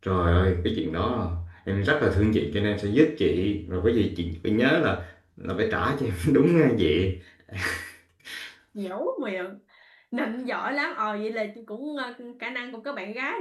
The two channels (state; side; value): identical; both; correlation 1.00